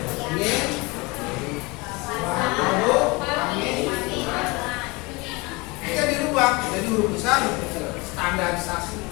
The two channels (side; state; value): right; quieter; 25.6 dB